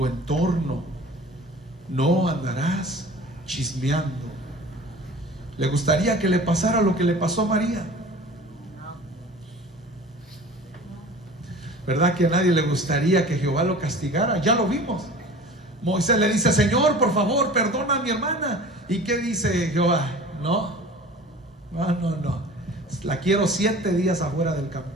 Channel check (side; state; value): both; normal; correlation 0.41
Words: entorno. No andarás chismeando. ¿Le gustaría que le pasara lo que le pasó a María? ¿Verdad que a nadie le gustaría que Jehová lo castigara? Ya lo vimos. Moisés le dice, Señor, por favor, perdona a mi hermana. ¿Y qué dice Jehová? No. La quiero 7 días afuera del